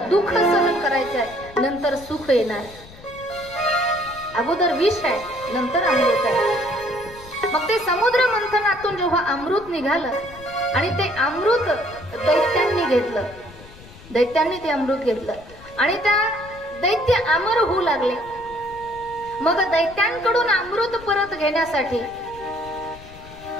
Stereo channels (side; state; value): left; noise; rumble, 20 dB below the sound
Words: दुःख सहन करायचं आहे नंतर सुख येणार आहे. अगोदर विष आहे नंतर अमृत आहे. मग ते समुद्र मंथनातून जेव्हा अमृत निघालं आणि ते अमृत दैत्यांनी घेतलं. दैत्यांनी ते अमृत घेतलं आणि त्या दैत्य अमर होऊ लागले. मग दैत्यांकडून अमृत परत घेण्यासाठी